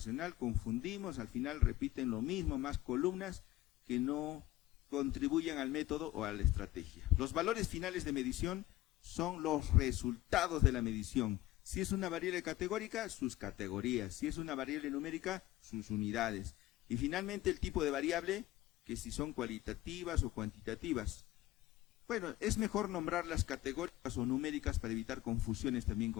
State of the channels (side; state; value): right; quieter; 16.0 dB